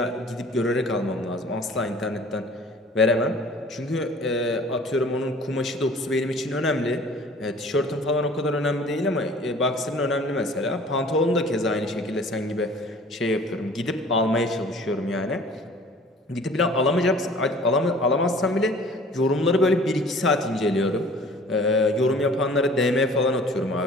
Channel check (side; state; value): both; normal; correlation 0.49